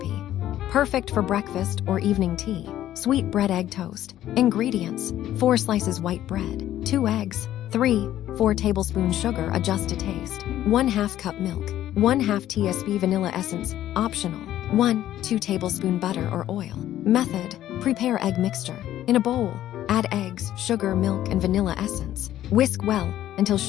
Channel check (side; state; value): right; quieter; 12.7 dB